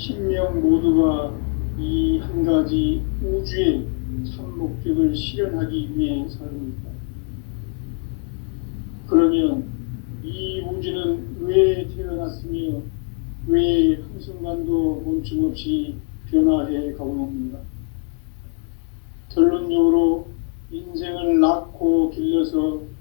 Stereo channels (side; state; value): right; quieter; 39.3 dB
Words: 모두가 이 한 가지 우주의 참 목적을 실현하기 위해 살고 있다. 그러면 이 우주는 왜 태어났으며 왜 한순간도 멈춤없이 변화해 가고 있는가? 결론적으로 인생을 낳고 길러서